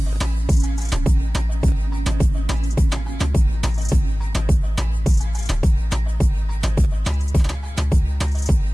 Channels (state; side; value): normal; both; correlation 0.97